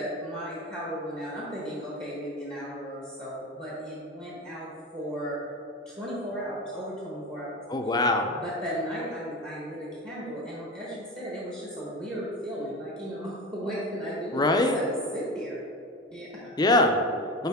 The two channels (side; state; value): both; normal; correlation 0.26